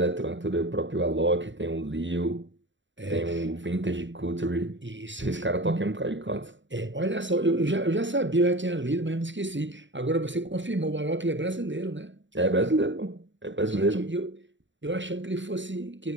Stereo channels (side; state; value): left; late; 0.54 ms